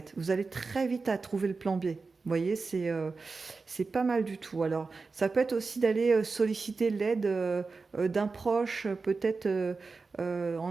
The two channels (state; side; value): quieter; left; 4.2 dB